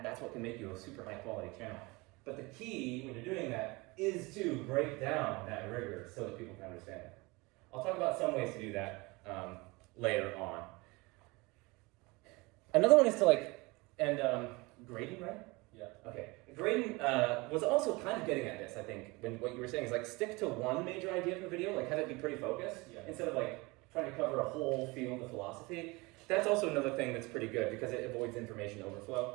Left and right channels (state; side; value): quieter; left; 24.7 dB